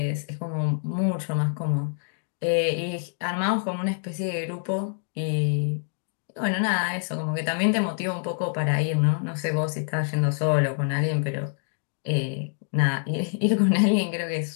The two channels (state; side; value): silent; right; digital silence